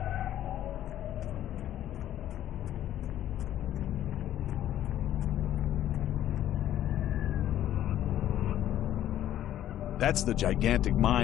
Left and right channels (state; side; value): quieter; right; 12.0 dB